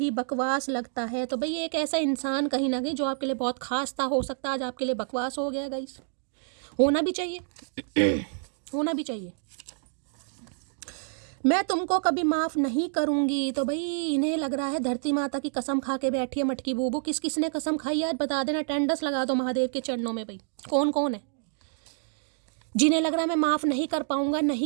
बकवास लगता है। तो भाई एक ऐसा इंसान कहीं ना कहीं जो आपके लिए बहुत खास था, हो सकता है आज आपके लिए बकवास हो गया गाइस। होना भी चाहिए होना भी चाहिए। मैं तुमको कभी माफ़ नहीं करूंगी। तो भाई इन्हें लग रहा है धरती माता की कसम खा के बैठी है मटकी बूबू। किस किस ने कसम खाई आज बता देना, टेंडस लगा दो महादेव के चरणों में। भाई कौन कौन है जिन्हें लग रहा है मैं माफ़ नहीं कर पाऊंगा,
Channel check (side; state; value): left; silent; digital silence